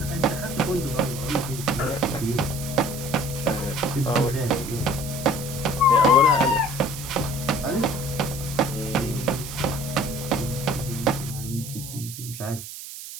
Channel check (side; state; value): right; noise; hiss, 11 dB below the sound